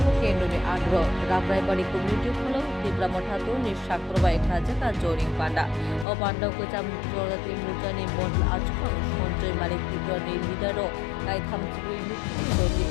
Kendoni Agro, Rabraibari Community Follow, Dibramotatu, Nishakrabai Kajaka, Joring Panda, O Panda Kucham Jorati Mutani Bond Achko, Monjoy Malik Tibrani Lidaro, I come to be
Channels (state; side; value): drops out; right; at 6.1 s